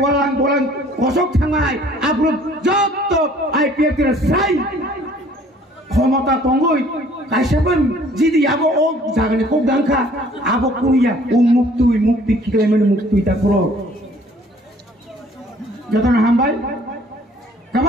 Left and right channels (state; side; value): normal; both; correlation 0.56